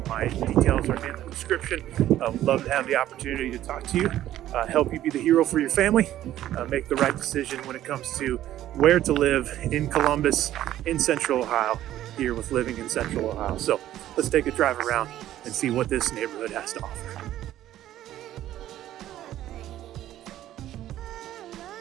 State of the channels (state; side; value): quieter; left; 13.0 dB